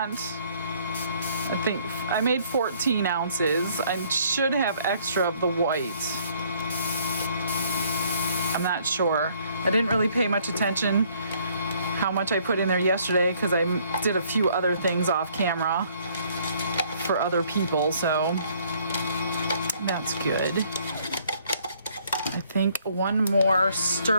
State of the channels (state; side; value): inverted; both; correlation -0.63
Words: I think I made 14 ounces. I should have extra of the white. I'm not sure. I didn't really pay much attention how much I put in there yesterday because I did a few other things off camera for other people, so that's good. I think one more